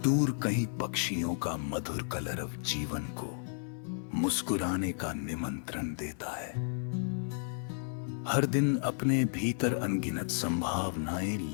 दूर कहीं पक्षियों का मधुर कलरव जीवन को मुस्कुराने का निमंत्रण देता है। हर दिन अपने भीतर अनगिनत संभावनाएं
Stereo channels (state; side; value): silent; right; 56 dB below the other